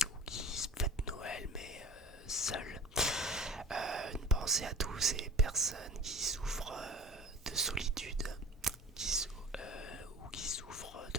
qui fêtent Noël mais seuls. Une pensée à tous ces personnes qui souffrent de solitude, ou qui souffrent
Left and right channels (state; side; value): normal; both; correlation 0.37